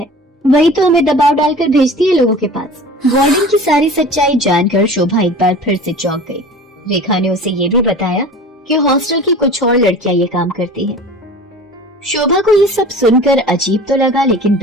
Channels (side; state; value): both; normal; correlation 0.39